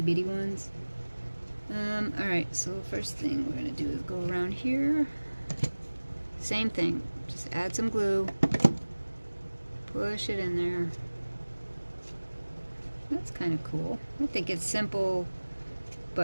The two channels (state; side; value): inverted; both; correlation -1.00